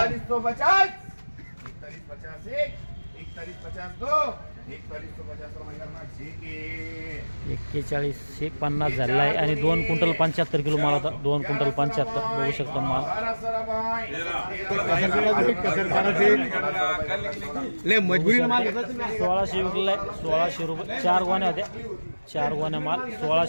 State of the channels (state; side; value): inverted; both; correlation -1.00